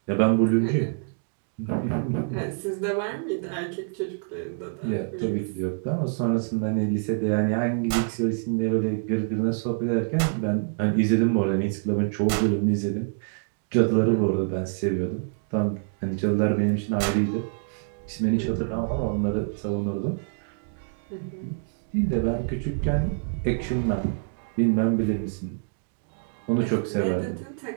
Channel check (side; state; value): left; silent; digital silence